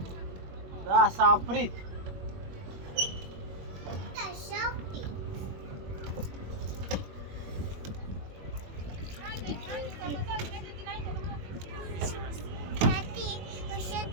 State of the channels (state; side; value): late; left; 21 ms